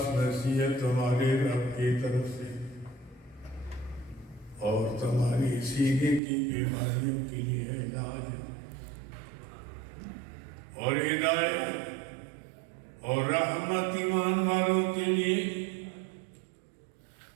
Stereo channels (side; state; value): left; drops out; at 6.2 s